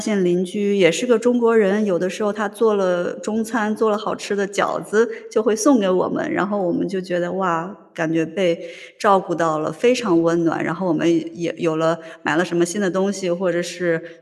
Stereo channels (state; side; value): identical; both; correlation 1.00